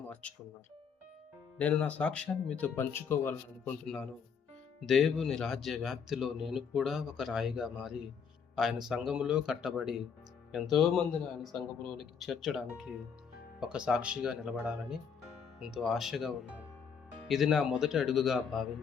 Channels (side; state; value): right; quieter; 6.6 dB